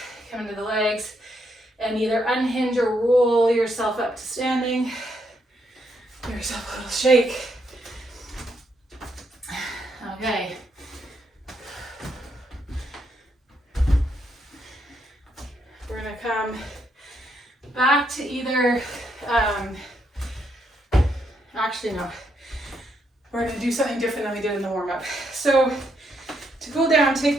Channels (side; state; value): both; normal; correlation 0.77